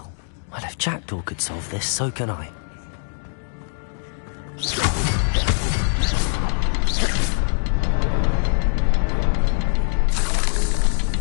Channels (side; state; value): right; silent; digital silence